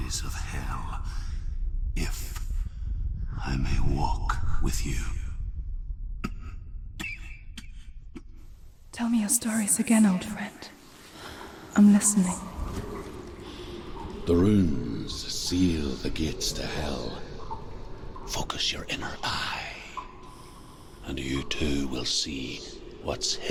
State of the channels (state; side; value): identical; both; correlation 1.00